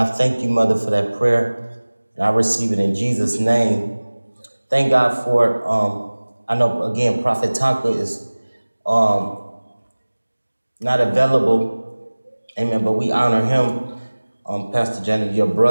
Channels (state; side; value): inverted; both; correlation -1.00